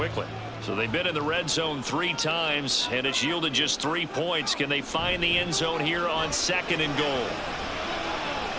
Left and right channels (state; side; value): identical; both; correlation 1.00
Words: So they've been in the red zone 3 times, and it's yielded just 3 points. Can they find the end zone here on 2nd and goal?